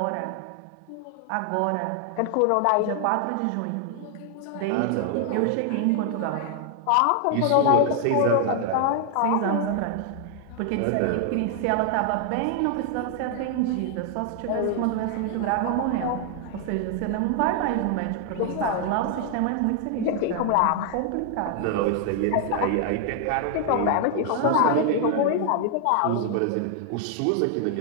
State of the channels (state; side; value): different; both; correlation 0.00